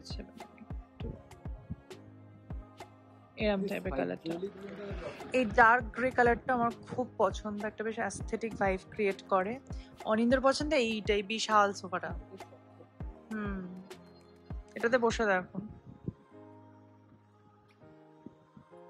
এরকম টাইপের কালারটা। এই ডার্ক গ্রে কালারটা আমার খুব পছন্দ, একটা বেশ অ্যাস্থেটিক ভাইব ক্রিয়েট করে। অনিন্দর পছন্দ এইটাই, বিশাল সোফাটা। এটাতে বসে দেখো।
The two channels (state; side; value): identical; both; correlation 1.00